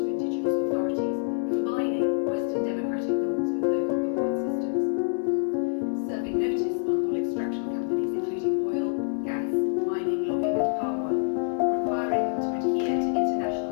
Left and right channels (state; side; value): silent; right; 60 dB below the other